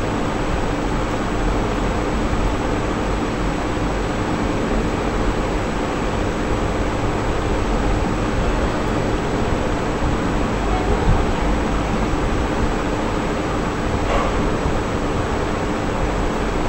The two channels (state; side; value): identical; both; correlation 1.00